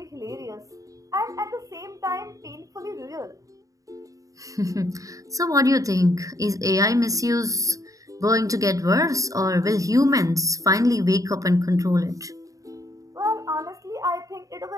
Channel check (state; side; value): late; left; 0.16 ms